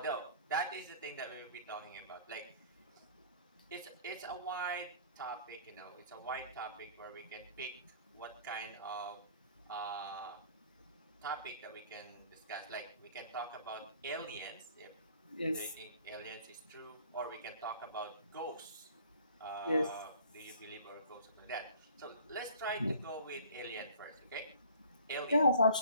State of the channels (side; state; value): both; inverted; correlation -0.50